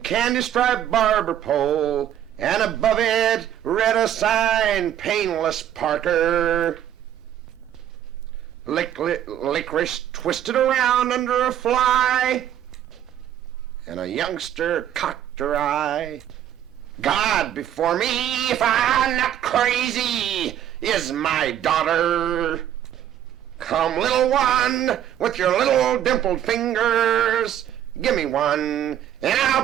candy-striped barber pole, and above it read a sign, Painless Parker. Licorice twisted around under a fly, and a youngster cocked her eye. God before me, if I'm not crazy, is my daughter. Come, little one, with your little dimpled fingers, give me one, and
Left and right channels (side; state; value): left; quieter; 10.8 dB